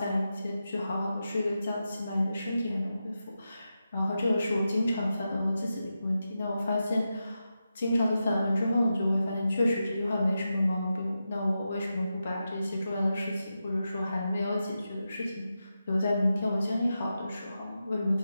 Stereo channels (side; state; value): both; inverted; correlation -0.90